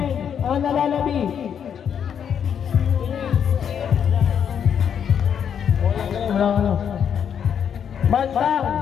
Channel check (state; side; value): quieter; right; 8.1 dB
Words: Ang nalalabi. Bantang,